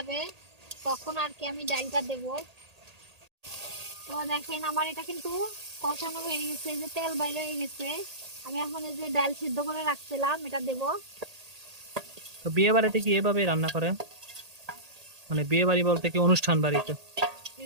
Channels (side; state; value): left; late; 1.8 ms